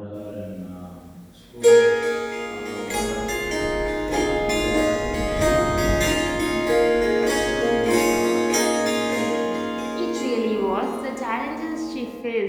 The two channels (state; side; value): identical; both; correlation 1.00